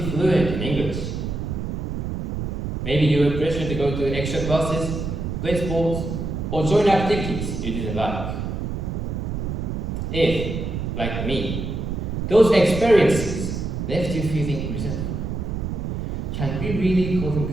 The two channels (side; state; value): right; noise; rumble, 3 dB below the sound